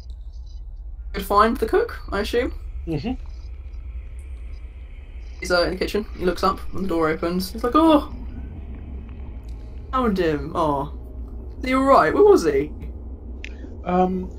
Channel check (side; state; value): both; identical; correlation 1.00